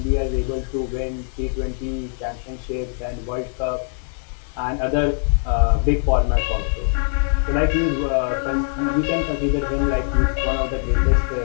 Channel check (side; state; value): right; silent; 64 dB below the other